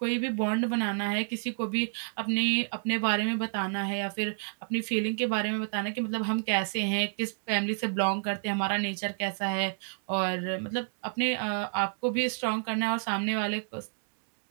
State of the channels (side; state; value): left; silent; 58 dB below the other